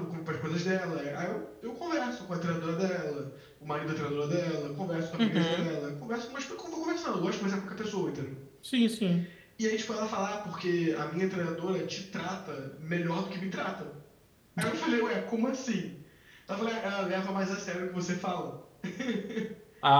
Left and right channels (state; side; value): identical; both; correlation 1.00